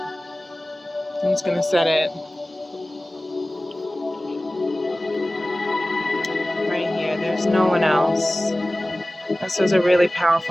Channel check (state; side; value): normal; both; correlation 0.97